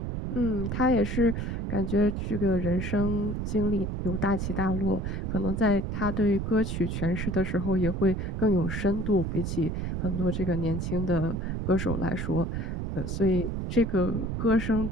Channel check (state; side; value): noise; right; rumble, 2 dB below the sound